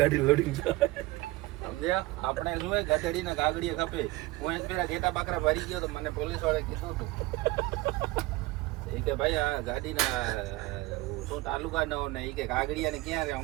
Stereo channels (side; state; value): left; quieter; 20.2 dB